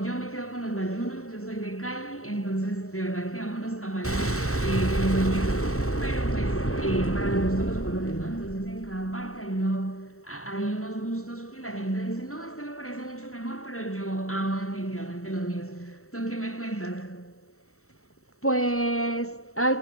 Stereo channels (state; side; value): late; right; 0.64 ms